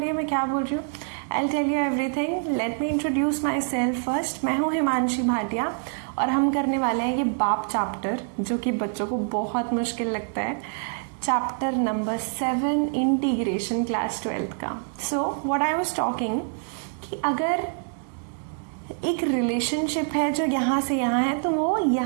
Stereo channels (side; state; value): left; silent; 55 dB below the other